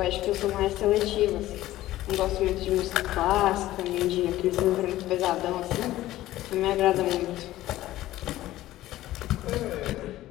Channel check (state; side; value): quieter; right; 15.3 dB